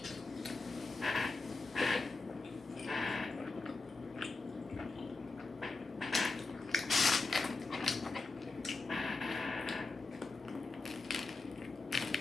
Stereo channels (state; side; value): quieter; right; 3.7 dB